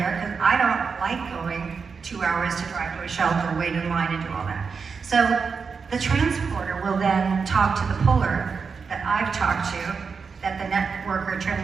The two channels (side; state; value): left; quieter; 5.4 dB